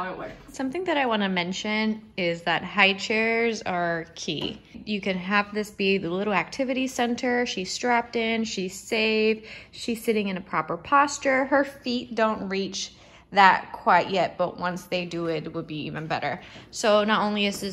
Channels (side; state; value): both; identical; correlation 1.00